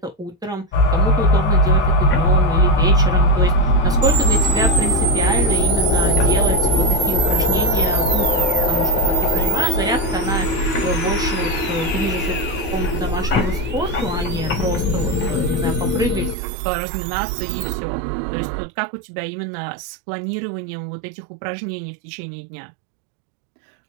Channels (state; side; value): drops out; left; at 16.4 s